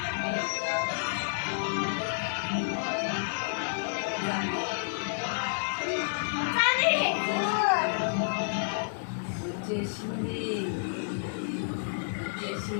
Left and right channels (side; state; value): right; silent; digital silence